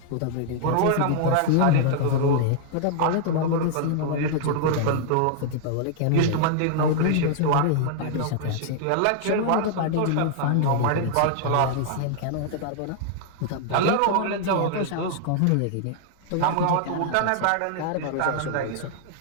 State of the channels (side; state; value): both; different; correlation 0.00